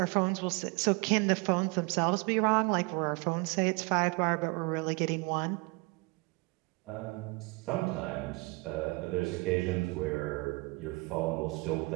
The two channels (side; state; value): left; quieter; 27.4 dB